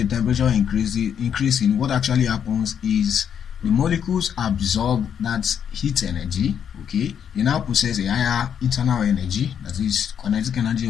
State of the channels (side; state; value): right; quieter; 8.3 dB